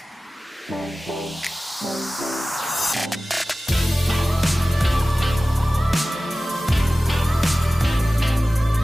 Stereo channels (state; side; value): normal; both; correlation 0.96